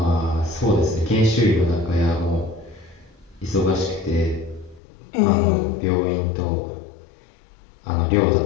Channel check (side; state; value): right; drops out; at 4.8 s